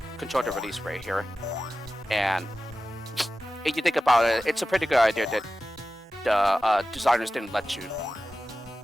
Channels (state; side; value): normal; both; correlation 0.94